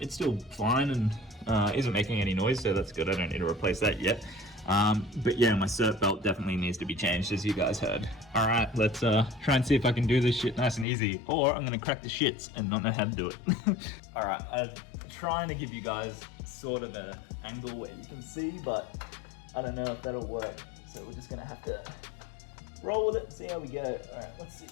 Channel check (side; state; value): right; drops out; at 10.9 s